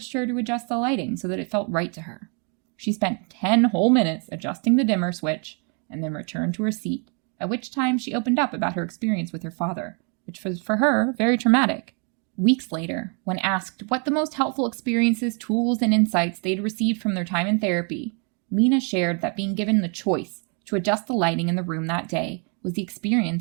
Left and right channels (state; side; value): quieter; left; 37.5 dB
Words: her to adjust the lighting so that it felt right to her. She spent 10 whole minutes adjusting the dimmer switch and then returned to her seat, at which time she opened up about her experience with her father, which was for her very traumatic. Weeks later, when asked what the most helpful experiences, tools, and insights they'd received from their time in therapy, Mina shared that being given the choice to adjust the lighting in the room that day was the